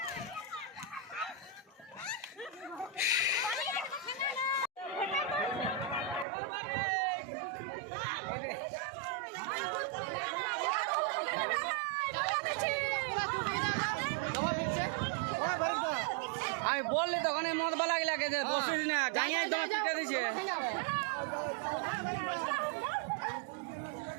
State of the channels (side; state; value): left; drops out; at 6.2 s